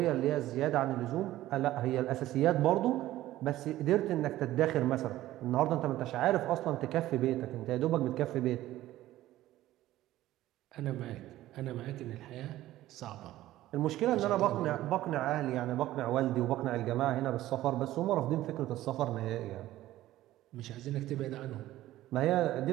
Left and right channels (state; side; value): quieter; left; 15.0 dB